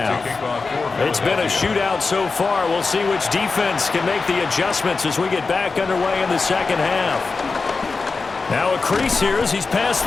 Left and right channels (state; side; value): quieter; right; 4.2 dB